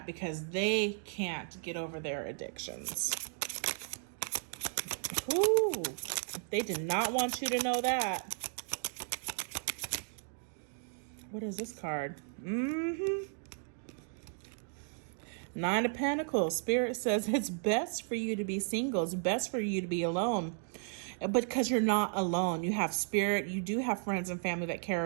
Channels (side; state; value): left; silent; 55 dB below the other